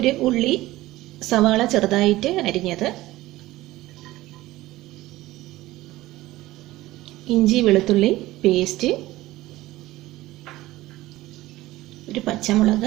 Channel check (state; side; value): quieter; left; 17.3 dB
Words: ഉള്ളി സവാള ചെറുതായിട്ട് അരിഞ്ഞത്, ഇഞ്ചി വെളുത്തുള്ളി പേസ്റ്റ്, 1